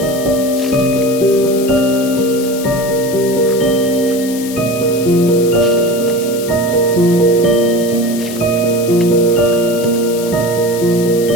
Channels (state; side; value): noise; left; hiss, 12 dB below the sound